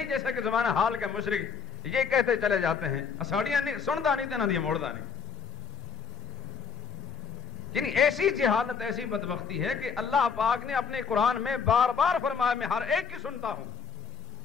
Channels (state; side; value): quieter; right; 6.3 dB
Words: جیسا کہ زمانہ حال کے مشرک یہ کہتے چلے جاتے ہیں اساڑیاں نہیں سنتا نہیں تنا دیا موڑتا نہیں. یعنی ایسی جہالت، ایسی بدبختی ہے کہ اللہ پاک نے اپنے قرآن میں بار بار فرمایا میں ہر ایک کی سنتا ہوں.